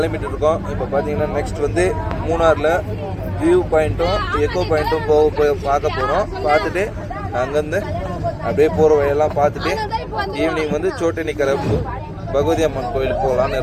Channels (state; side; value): identical; both; correlation 1.00